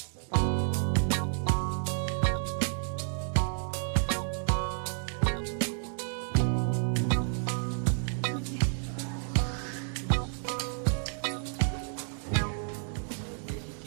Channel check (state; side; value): silent; left; 57 dB below the other